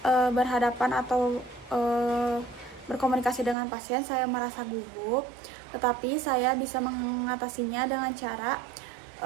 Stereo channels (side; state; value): left; drops out; at 3.6 s